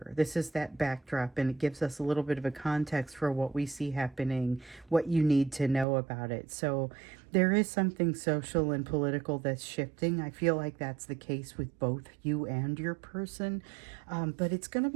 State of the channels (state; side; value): drops out; left; at 5.9 s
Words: This is that backdrop, and it gives us a little bit of a context for what we see happening, what you need to know about it. So there is something social and political that's shifting. I feel like that's the case with both you and your person, but it's going to